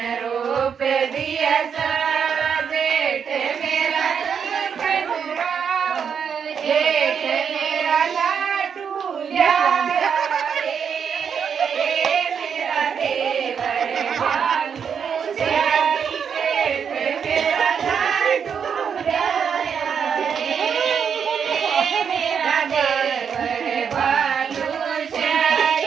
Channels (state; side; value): quieter; left; 7.1 dB